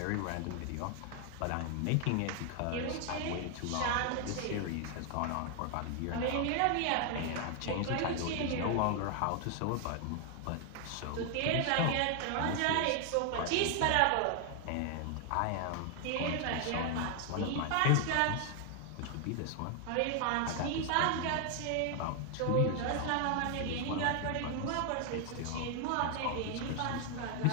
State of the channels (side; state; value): both; different; correlation 0.00